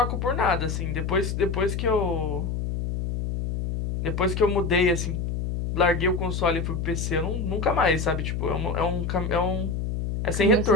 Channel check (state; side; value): noise; left; hum, 2 dB below the sound